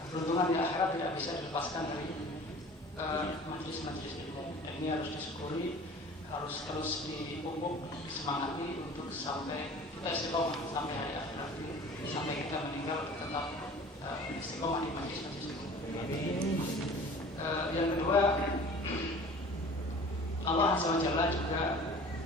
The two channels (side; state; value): both; normal; correlation 0.44